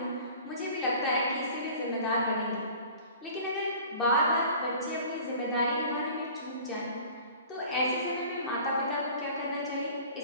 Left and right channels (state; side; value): inverted; both; correlation -0.44